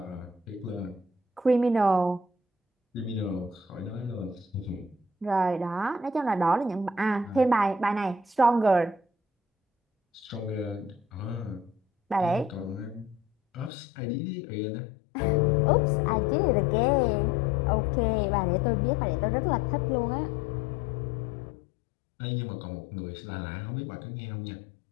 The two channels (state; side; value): drops out; right; at 13.7 s